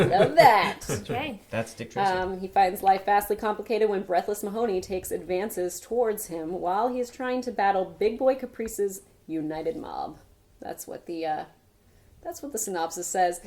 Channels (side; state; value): both; identical; correlation 1.00